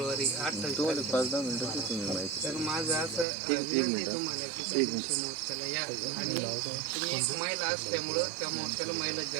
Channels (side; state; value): left; drops out; at 3.2 s